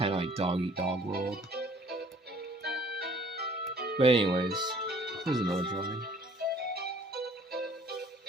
of like dog eat dog world. But anyways, here's another drawing.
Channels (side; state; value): both; normal; correlation 0.56